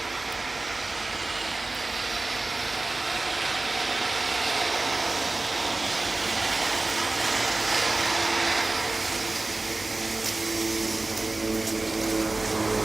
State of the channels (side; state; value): left; quieter; 3.1 dB